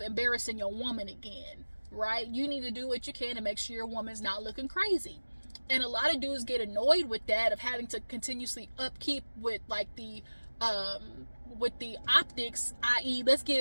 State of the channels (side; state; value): both; inverted; correlation -1.00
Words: embarrassing your woman again, right? You need to do what you can to make sure your woman's not looking crazy. And a lot of dudes get annoyed with that, of having to continuously upkeep with like the optics, i.e. let's